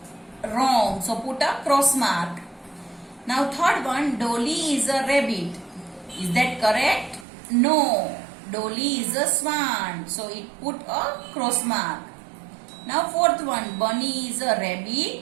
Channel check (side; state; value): left; drops out; at 7.2 s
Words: wrong. So put a cross mark. Now third one, Dolly is a rabbit. Is that correct? No. Dolly is a swan. So it put a cross mark. Now fourth one, Bunny is a